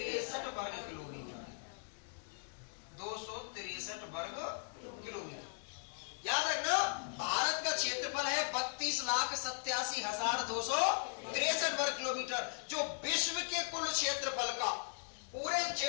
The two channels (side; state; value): right; silent; 52 dB below the other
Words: वर्ग किलोमीटर। 263 वर्ग किलोमीटर। याद रखना, भारत का क्षेत्रफल है 32,87,263 वर्ग किलोमीटर, जो विश्व के कुल क्षेत्रफल का,